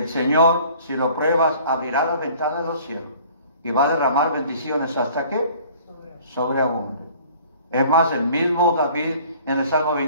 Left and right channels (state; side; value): inverted; both; correlation -0.51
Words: Señor, si lo pruebas, abrirá la ventana de los cielos y va a derramar bendiciones hasta que sobreabunde. Es más, el mismo David en el Salmo